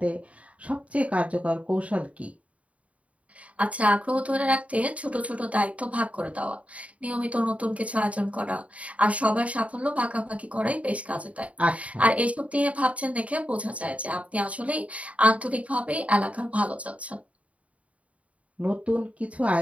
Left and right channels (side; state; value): left; late; 0.066 ms